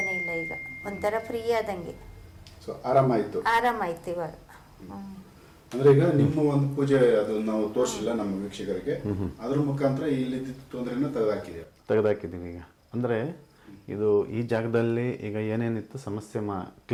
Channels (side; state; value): both; identical; correlation 1.00